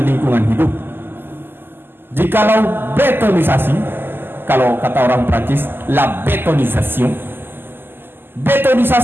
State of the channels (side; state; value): left; late; 0.099 ms